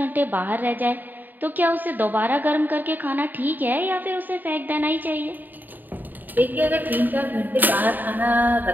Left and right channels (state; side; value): late; left; 0.088 ms